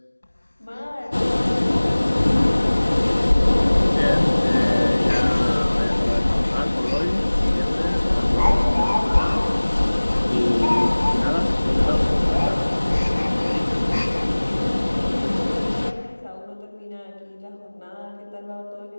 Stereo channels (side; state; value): both; inverted; correlation -1.00